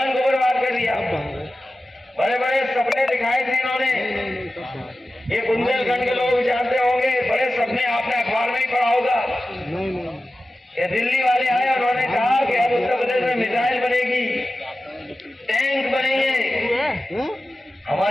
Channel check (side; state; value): both; normal; correlation 0.94